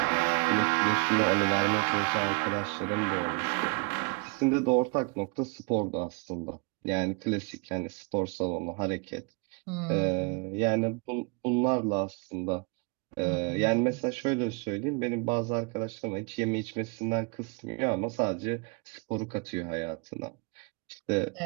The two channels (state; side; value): quieter; left; 32.2 dB